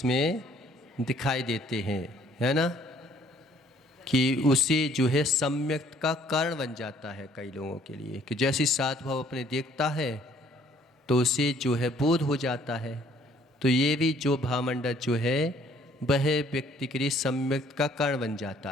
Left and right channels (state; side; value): normal; both; correlation 0.60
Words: दिखाई देते हैं, है ना, कि उसे जो है सम्यक का कारण बन जाता है कई लोगों के लिए, कि जैसे 7 भव अपने देखता है तो उसे जो है बोध हो जाता है। तो ये भी जो भावमंडल जो है वह व्यक्ति के लिए सम्यक का कारण बन जाता